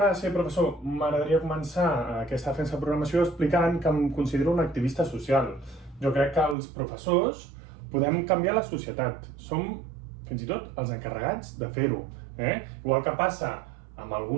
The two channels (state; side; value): drops out; left; at 6.6 s